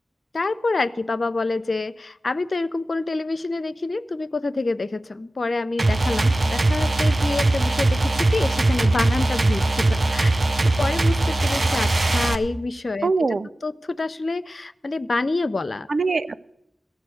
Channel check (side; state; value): both; normal; correlation 0.95